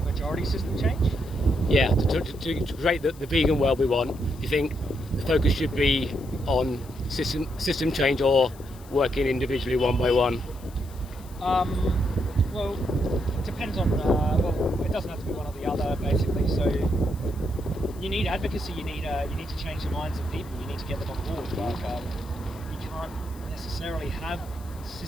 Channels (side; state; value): left; noise; hiss, 23 dB below the sound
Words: majority system change? Yeah, to create the vegan world we want, do you think the focus should be on system change or working individually one by one? Well, it depends on, well, it doesn't have to be one or the other, basically. So you need advocacy, you need to change the minds of people, you need to get them on board. Like, you can't necessarily have